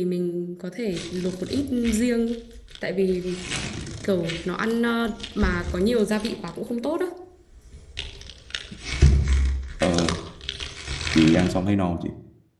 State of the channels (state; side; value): identical; both; correlation 1.00